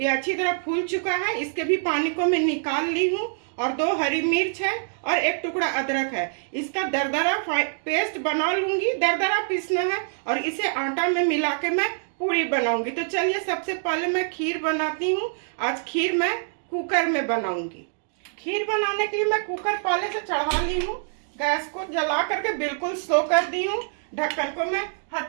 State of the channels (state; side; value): silent; left; digital silence